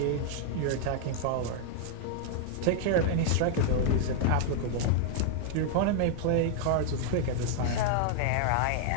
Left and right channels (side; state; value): both; different; correlation -0.01